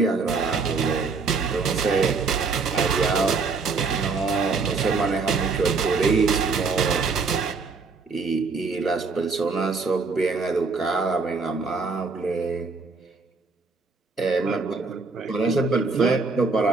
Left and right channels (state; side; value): quieter; left; 4.4 dB